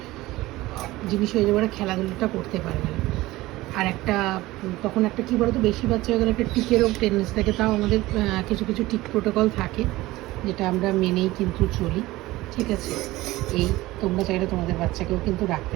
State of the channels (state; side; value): quieter; left; 18.3 dB